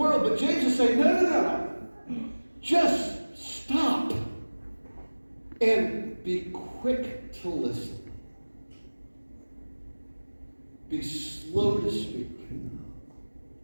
But James is saying, no. Just stop and be quick to listen. Be slow to speak.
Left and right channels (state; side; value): inverted; both; correlation -1.00